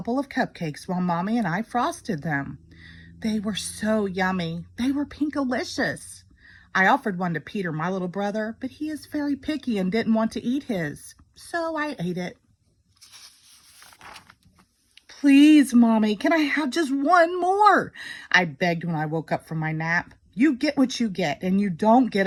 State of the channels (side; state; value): both; identical; correlation 1.00